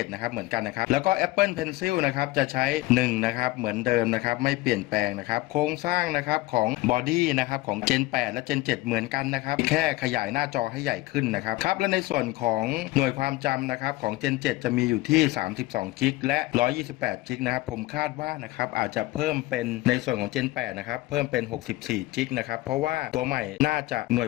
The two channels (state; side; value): quieter; right; 18.8 dB